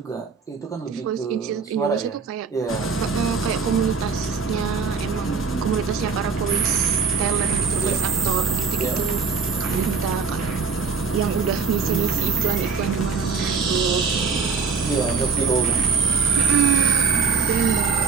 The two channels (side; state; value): left; quieter; 5.3 dB